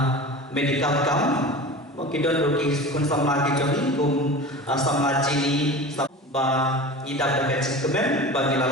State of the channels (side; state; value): both; normal; correlation 0.34